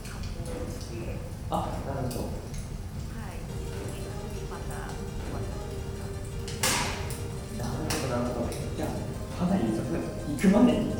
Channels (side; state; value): both; identical; correlation 1.00